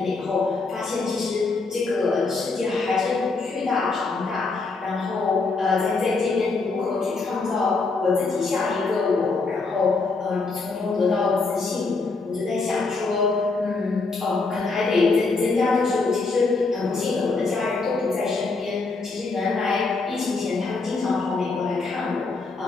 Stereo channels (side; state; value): right; quieter; 3.9 dB